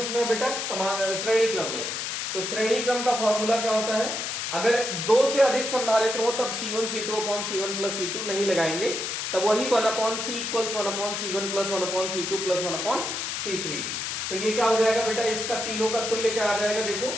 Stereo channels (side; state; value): left; noise; hiss, 3 dB below the sound